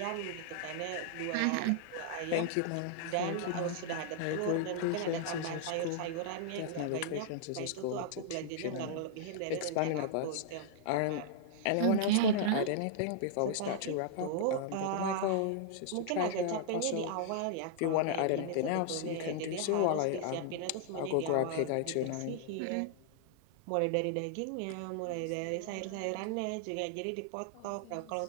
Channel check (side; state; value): both; different; correlation -0.01